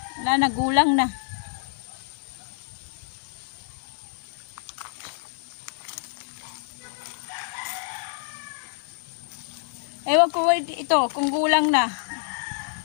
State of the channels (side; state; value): right; silent; digital silence